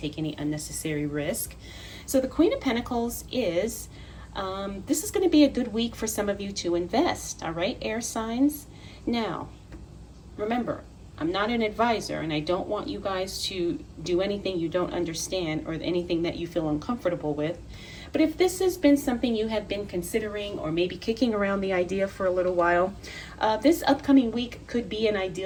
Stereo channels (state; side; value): identical; both; correlation 1.00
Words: any unnecessary risk. So the Queen of Pentacles is, this is going to be a good week for some of you to invest, all right, air signs? Now, remember, I'm not an advisor, and I don't want you guys to do anything you don't understand or anything that you feel uncomfortable with. But if this has been something you have been considering or maybe kicking around the idea for a little while, this upcoming week could be an